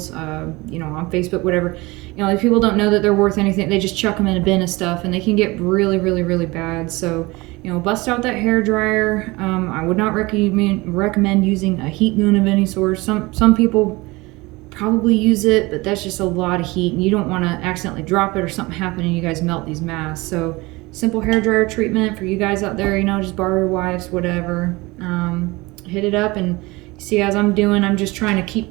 you know, on Facebook, whatever. You know, if people don't know that they're worth anything, they just chuck them in a bin of stuff, and they can get really, really, really bad. So, you know, bust out that hair dryer. I would not recommend using a heat gun of any sort. Some people probably use it, but that's just a lot of heat, and you don't want to accidentally drop it or something happen and you guys melt these masks. So simple hair dryer treatment for you guys out there, you know, just borrow your wife's, whatever. Hit it up, and see, as I'm doing, I'm just trying to keep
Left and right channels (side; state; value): left; quieter; 22.6 dB